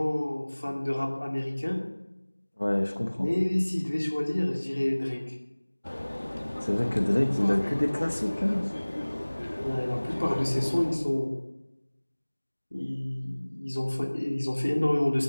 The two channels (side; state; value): both; inverted; correlation -1.00